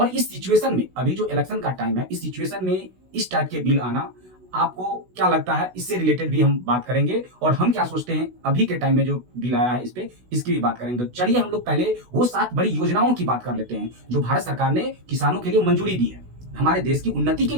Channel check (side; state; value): left; late; 16 ms